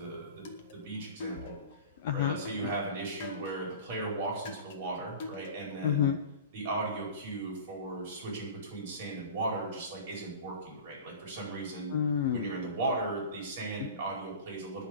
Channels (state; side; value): inverted; both; correlation -0.35